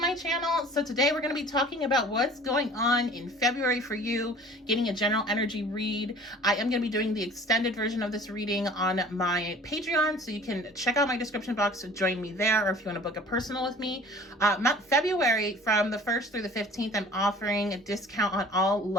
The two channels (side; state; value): both; normal; correlation 0.47